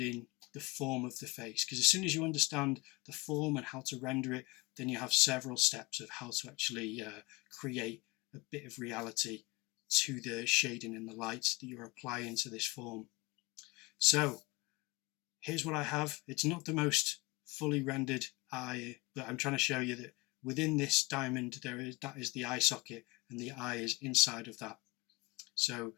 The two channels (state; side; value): quieter; right; 23.1 dB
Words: the form of the face, because as soon as you understand the form and how to render it, then you have several steps of how to actually create a bit of reality to the shading and the light that you're applying to this form. So here's what I have. It's not the most fully rendered eye, but I'm trying to show you that within this diamond that is the eye socket, and the eye is inside of that. So